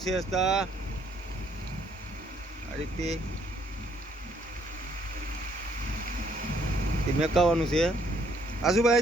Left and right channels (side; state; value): both; normal; correlation 0.67